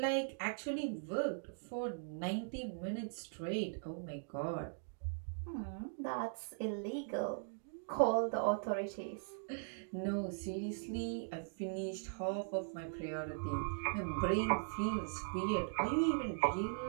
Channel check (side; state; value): left; silent; digital silence